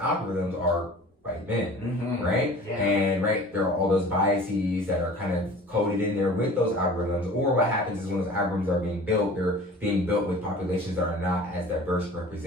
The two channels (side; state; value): both; normal; correlation 0.43